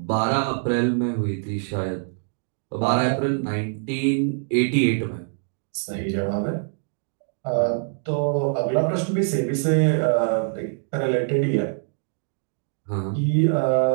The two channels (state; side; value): silent; left; digital silence